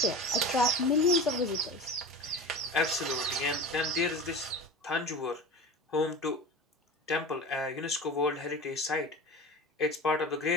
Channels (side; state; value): both; normal; correlation 0.32